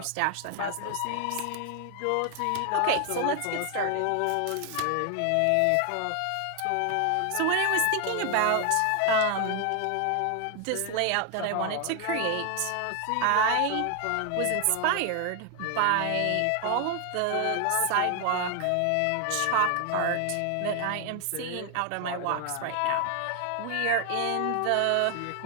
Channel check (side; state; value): both; different; correlation 0.00